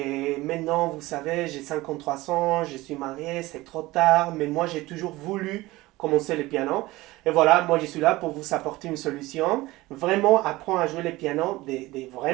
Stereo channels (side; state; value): left; quieter; 19.4 dB